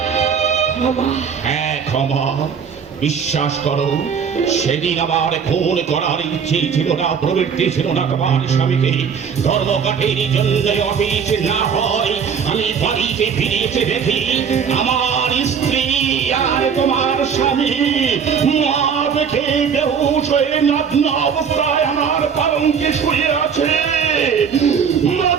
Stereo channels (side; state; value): left; quieter; 6.8 dB